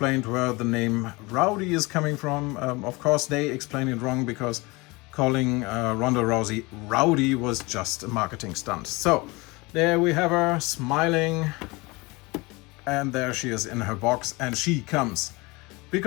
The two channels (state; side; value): quieter; right; 24.5 dB